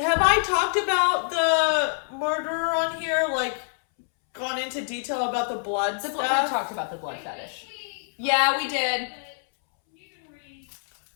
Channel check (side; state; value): right; silent; 61 dB below the other